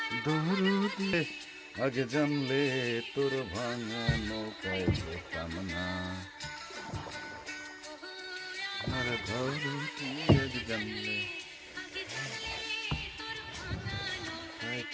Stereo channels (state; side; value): identical; both; correlation 1.00